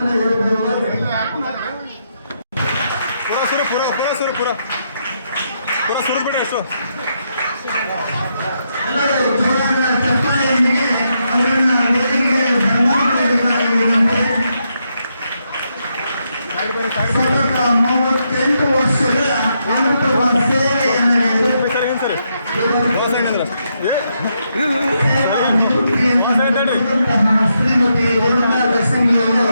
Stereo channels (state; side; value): inverted; both; correlation -0.80